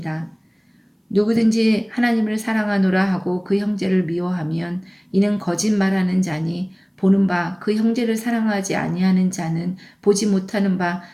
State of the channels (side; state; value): both; identical; correlation 1.00